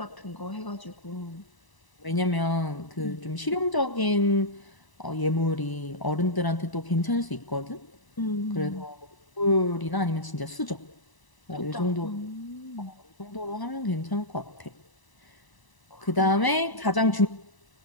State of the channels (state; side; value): late; right; 1.0 ms